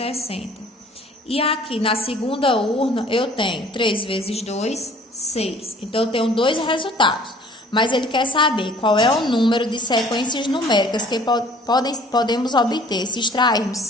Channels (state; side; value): normal; both; correlation 0.53